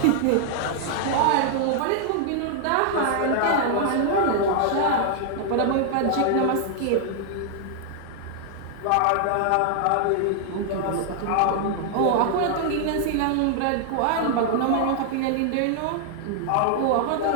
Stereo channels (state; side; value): different; both; correlation 0.00